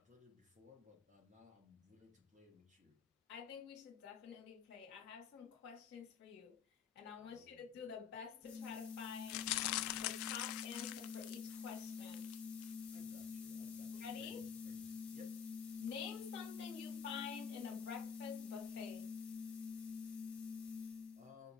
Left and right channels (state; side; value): quieter; right; 7.4 dB